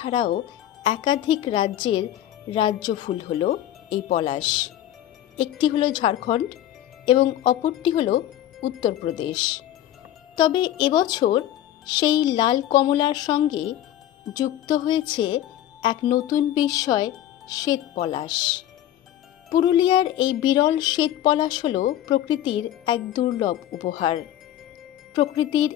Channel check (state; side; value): quieter; right; 12.2 dB